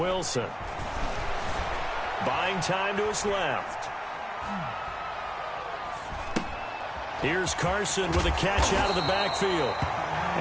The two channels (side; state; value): both; identical; correlation 1.00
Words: buying time to his left. Here's Carson with a catch out of the backfield.